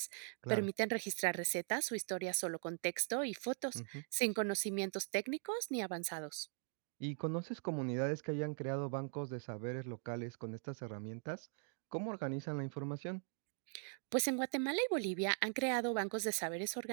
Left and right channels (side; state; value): left; silent; 50 dB below the other